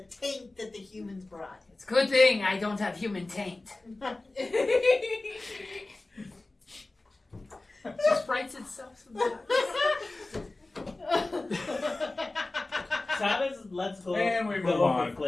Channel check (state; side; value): quieter; right; 3.0 dB